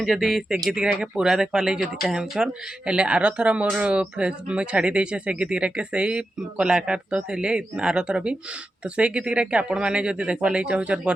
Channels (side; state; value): both; normal; correlation 0.90